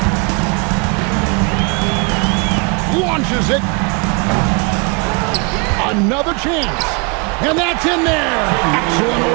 Launches it. Another chance. And that's in there. Excellent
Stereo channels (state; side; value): quieter; left; 31.9 dB